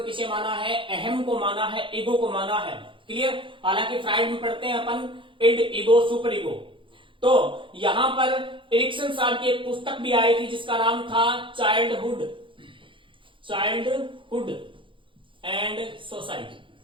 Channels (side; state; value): left; late; 0.25 ms